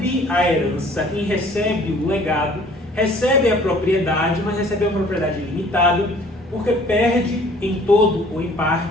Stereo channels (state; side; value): normal; both; correlation 0.54